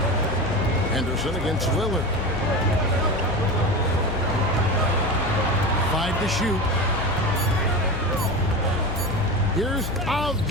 Henderson against Lillard. 5 to shoot. Here's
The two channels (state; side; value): noise; left; hum, 6 dB below the sound